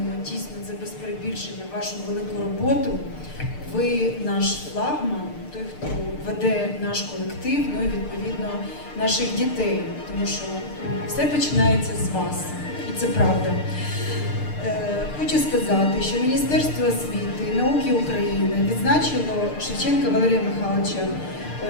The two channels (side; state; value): right; late; 6.7 ms